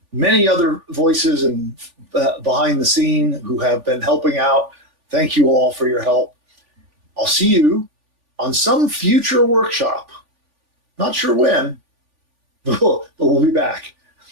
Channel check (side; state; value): left; late; 3.5 ms